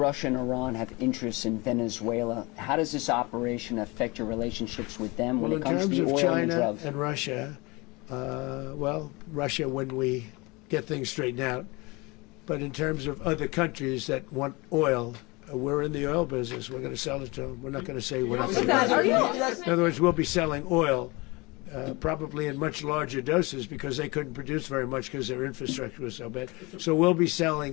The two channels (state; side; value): quieter; right; 25.1 dB